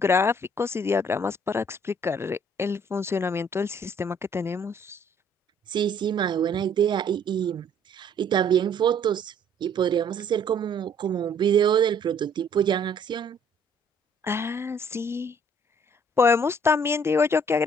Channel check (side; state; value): both; normal; correlation 0.60